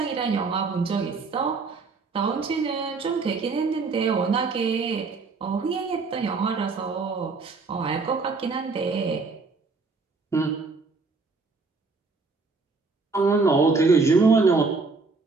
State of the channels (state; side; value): quieter; left; 4.2 dB